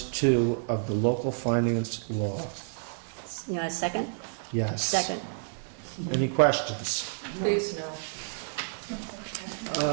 of the local finance law. You want a second? Yes. Second. Any questions? Please, no.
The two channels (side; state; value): left; silent; digital silence